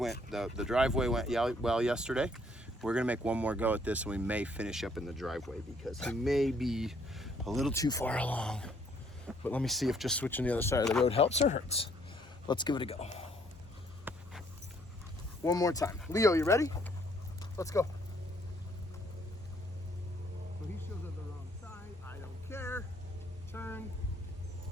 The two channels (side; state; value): both; normal; correlation 0.65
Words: the driveway went well yesterday. We're gonna make one more go at this, and we may finish up in the driveway because he may be a little too far along. But let me see if just switching the other side of the road helps or hurts. Let's give it a go. One more time. Leo, you ready? Let's go. So he shows up the wrong side. I don't care. Turn.